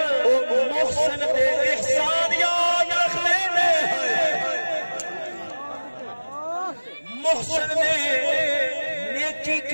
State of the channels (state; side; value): inverted; both; correlation -1.00